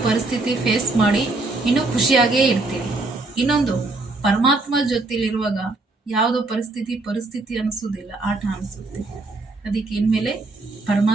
ಪರಿಸ್ಥಿತಿ ಫೇಸ್ ಮಾಡಿ ಇನ್ನೂ ಖುಷಿಯಾಗೇ ಇರ್ತೀವಿ. ಇನ್ನೊಂದು, ಪರಮಾತ್ಮ ಜೊತೆಲಿರುವಾಗ ಯಾವುದೋ ಪರಿಸ್ಥಿತಿ ಅನಿಸೋದಿಲ್ಲ, ಆಟ ಅನಿಸುತ್ತೆ. ಅದಕ್ಕೆ ಇನ್ಮೇಲೆ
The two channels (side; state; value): left; quieter; 3.3 dB